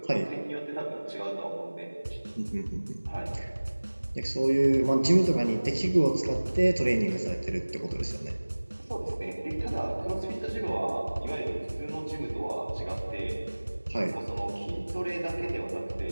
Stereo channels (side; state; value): both; inverted; correlation -1.00